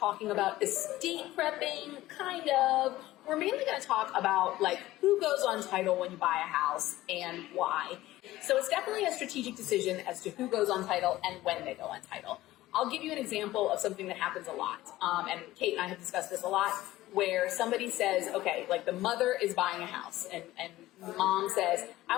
about estate prepping, kind of. We're mainly going to talk about like who goes on title when you buy a house and why. So it's definitely a strategic decision as to who goes on title and when they go on title. I'll give you an example of something that happens a lot. And Kate and I have discussed this a lot, where somebody says, okay, like the mother is buying a house and mom says, I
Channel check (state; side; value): quieter; right; 16.4 dB